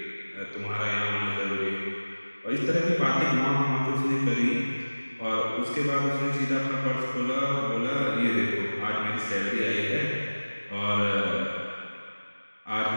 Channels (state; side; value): inverted; both; correlation -1.00